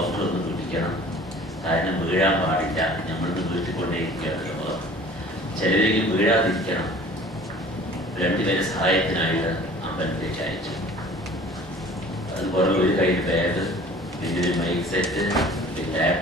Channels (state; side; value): normal; both; correlation 0.48